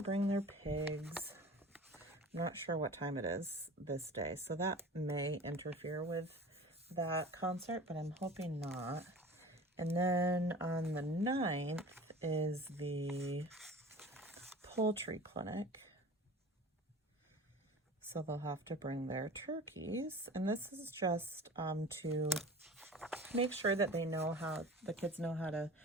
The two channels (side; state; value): both; normal; correlation 0.39